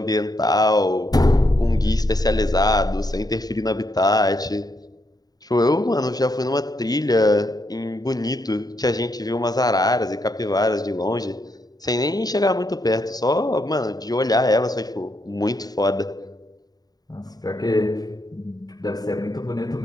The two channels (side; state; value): right; late; 0.19 ms